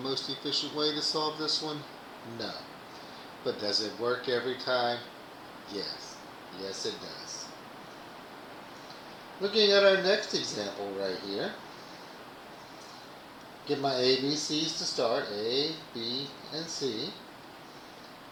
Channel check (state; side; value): identical; both; correlation 1.00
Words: efficient way to solve this one? No. But does it work every time? Yes. Yes, it does. Looking at our next example right here, get my ABCs to start, A, B, and C.